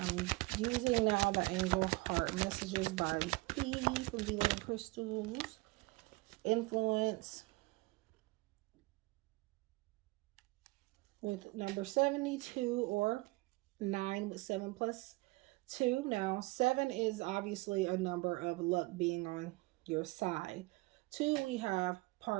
using now the Angel Heart Messages by P from Dealing Crystals. Influence with number 72 or 9 with 7 plus 2. Now, 7 is obviously a number of luck being on your side. 2, we have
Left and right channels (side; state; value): left; quieter; 23.3 dB